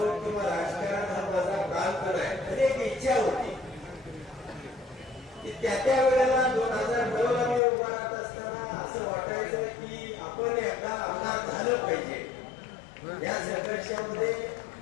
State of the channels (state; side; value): drops out; right; at 7.6 s